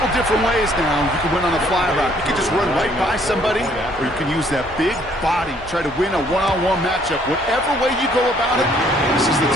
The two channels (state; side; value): normal; both; correlation 0.63